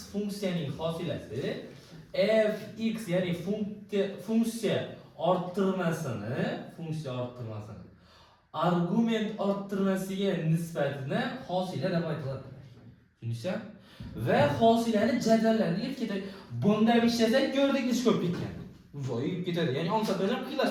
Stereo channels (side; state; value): both; identical; correlation 1.00